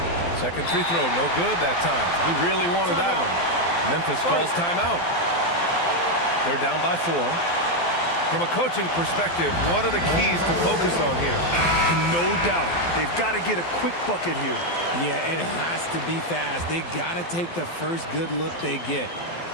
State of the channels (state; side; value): late; right; 12 ms